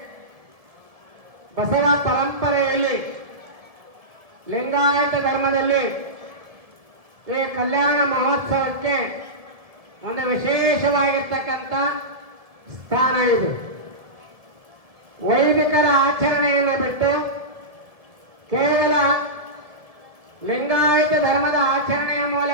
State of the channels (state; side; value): late; left; 1.7 ms